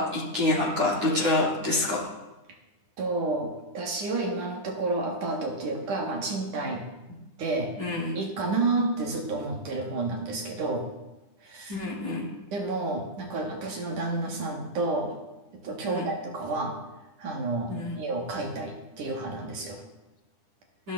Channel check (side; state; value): left; late; 10 ms